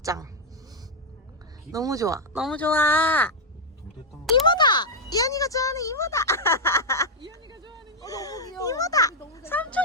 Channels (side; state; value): both; normal; correlation -0.01